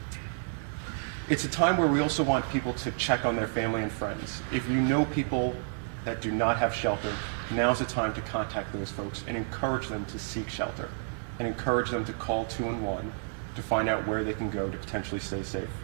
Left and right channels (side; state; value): left; silent; digital silence